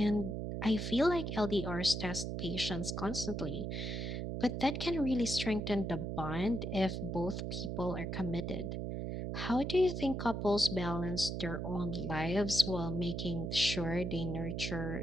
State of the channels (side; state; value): right; noise; hum, 3 dB below the sound